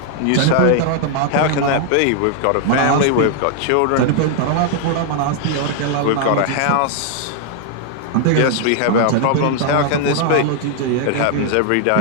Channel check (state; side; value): different; both; correlation 0.00